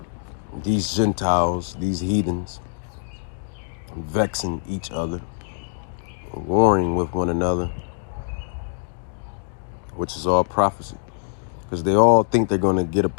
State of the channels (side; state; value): right; silent; digital silence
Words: These Gentiles, these heathens, vexing each other, warring with one another, which is all prophecy. Because they all think they're going to get a